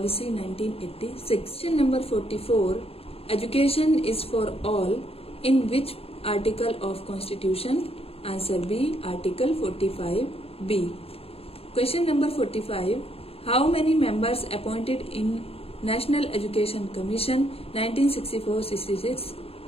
1986. Question number 44. Education is for all in which article of Constitution? Answer B. Article 45B. Question number 45. How many members appointed in National Education Commission 1964-66?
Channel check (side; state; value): right; late; 0.28 ms